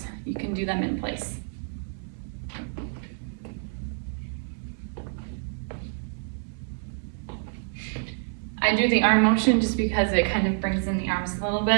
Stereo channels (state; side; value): silent; left; 60 dB below the other